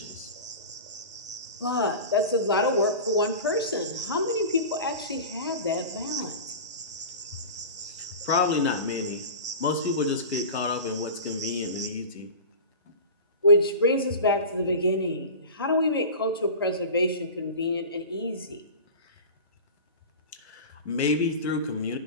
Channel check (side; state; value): both; inverted; correlation -0.33